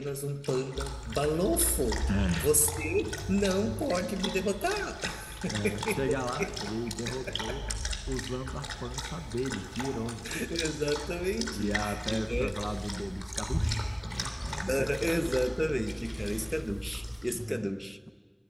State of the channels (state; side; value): identical; both; correlation 1.00